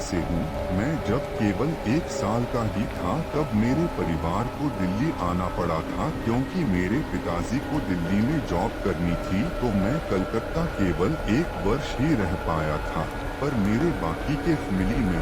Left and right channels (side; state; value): both; identical; correlation 1.00